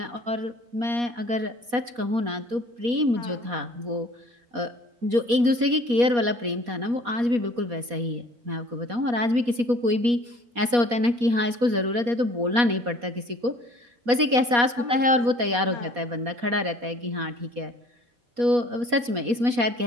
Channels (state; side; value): late; left; 4.2 ms